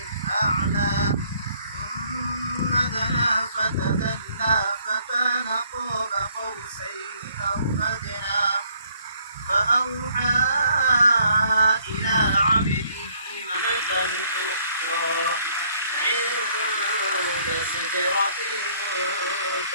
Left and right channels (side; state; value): both; inverted; correlation -0.64